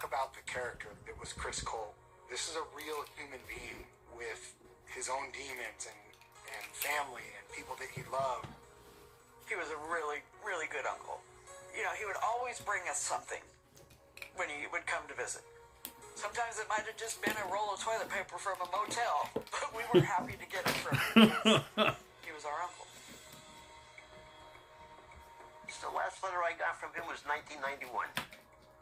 about the character that was Chris Colt. This is a real human being with his own demons and family and people that he loved. He was a really, really good uncle. You know, he would always bring us something when he would come to visit. Sometimes it might have just been a roll of toilet paper from a motel, but we were happy to get it from him because he was our uncle. The last letter I got from him was 1991.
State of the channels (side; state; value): both; identical; correlation 1.00